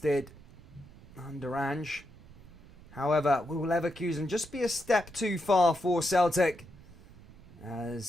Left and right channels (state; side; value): noise; right; rumble, 21 dB below the sound